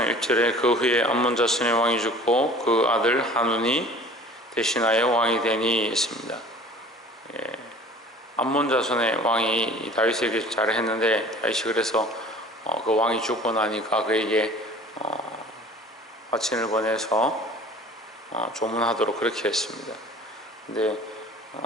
1절에 그 후에 암몬 자손의 왕이 죽고 그 아들 하눈이 대신하여 왕이 되니 있습니다. 암몬 자손의 왕이 다윗에게 잘했는데, 다윗이 그래서 그 왕이 죽고 나니까 그에게 화친을 보내서 조문하도록 그렇게 했습니다. 근데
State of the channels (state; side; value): normal; both; correlation 0.46